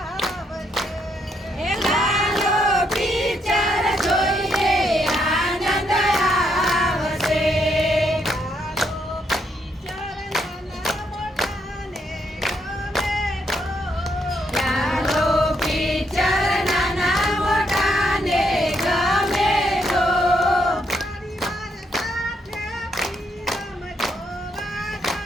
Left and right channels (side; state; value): both; normal; correlation 0.76